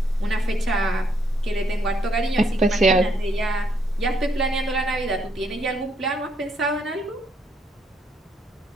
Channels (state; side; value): normal; both; correlation 0.73